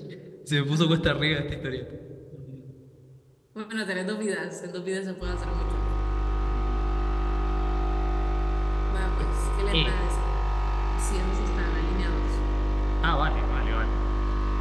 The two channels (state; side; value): identical; both; correlation 1.00